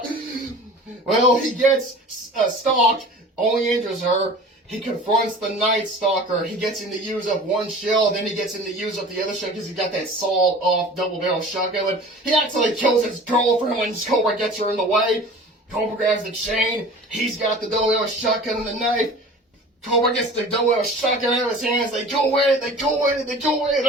Well, he gets stalked, only injures her. He confronts the Night Stalker. He gets him to use up one shell, then he gets him to use up the other shell because he got that sawed-off double-barrel shotgun. And he actually kills his girlfriend when Cobra gets her in the way. Cobra grabs the chain. He's got the double-barrel shotgun and the knife. Cobra gets the double-barrel shotgun out of his hands. They go at it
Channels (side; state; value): both; normal; correlation 0.41